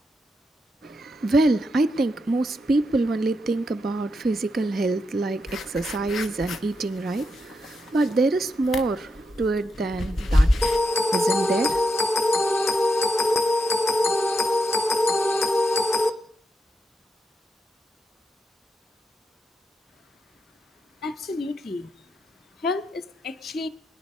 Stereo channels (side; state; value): both; normal; correlation 0.83